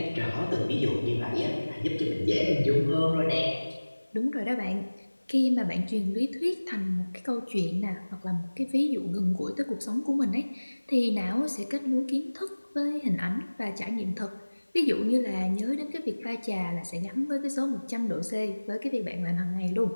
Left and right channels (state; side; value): inverted; both; correlation -1.00